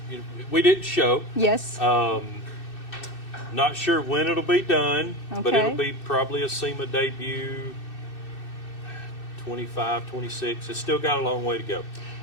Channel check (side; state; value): right; late; 2.6 ms